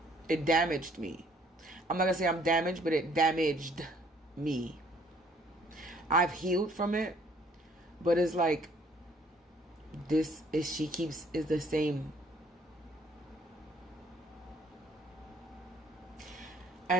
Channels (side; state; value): both; normal; correlation 0.61